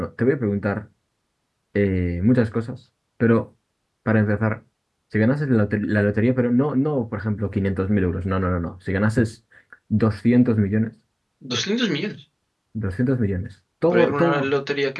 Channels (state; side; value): identical; both; correlation 1.00